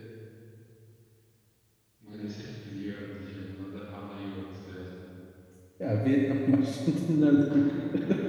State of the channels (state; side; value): identical; both; correlation 1.00